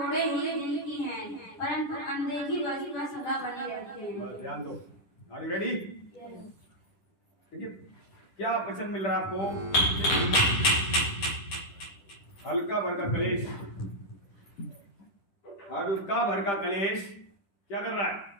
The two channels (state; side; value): late; right; 11 ms